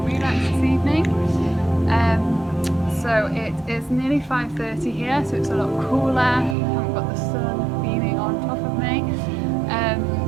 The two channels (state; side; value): drops out; left; at 6.6 s